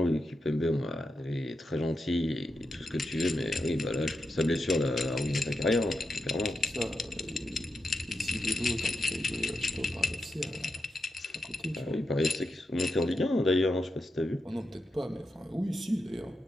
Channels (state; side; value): normal; both; correlation 0.87